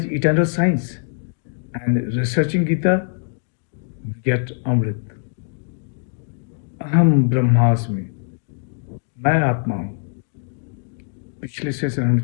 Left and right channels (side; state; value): right; silent; digital silence